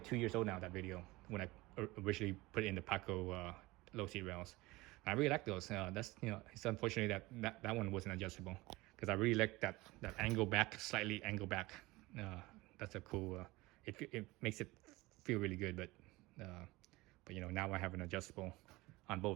2 years old now, that video, when I originally put in the Paco low seat rails. I really like those. That's it's unfortunate that one wasn't adjustable, because I really like that angle back, slightly angle back. That's a cool. It makes it feel really good, but now I have an adjustable on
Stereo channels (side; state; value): left; quieter; 20.8 dB